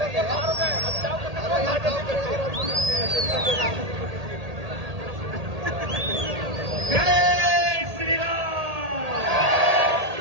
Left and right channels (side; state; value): left; late; 1.8 ms